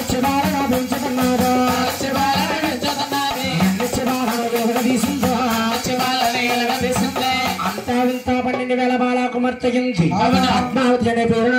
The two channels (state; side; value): identical; both; correlation 1.00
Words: పెంచుతున్నాడు అంతా వింతా 12,000 బాల కుమార్తెగింది పద్మావతి అనే పేరు